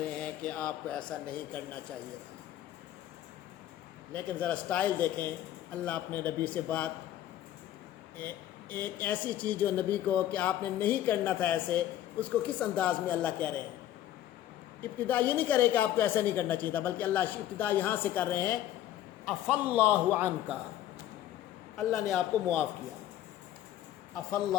رہے ہیں کہ آپ کو ایسا نہیں کرنا چاہیے تھا۔ لیکن ذرا سٹائل دیکھیں، اللہ اپنے نبی سے بات، ایک ایسی چیز جو نبی کو کہ آپ نے نہیں کرنا تھا ایسے، اس کو کس انداز میں اللہ کہہ رہے ہیں۔ ابتدا یہ نہیں کرے کہ آپ کو ایسا نہیں کرنا چاہیے تھا، بلکہ اللہ ابتدا یہاں سے کر رہے ہیں عفى اللہ عنک، اللہ نے آپ کو معاف کیا۔ عفى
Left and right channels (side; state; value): right; quieter; 12.6 dB